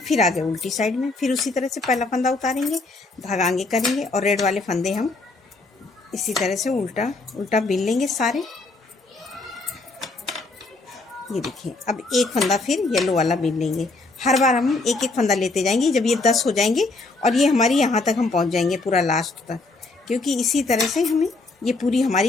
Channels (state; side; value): quieter; right; 3.4 dB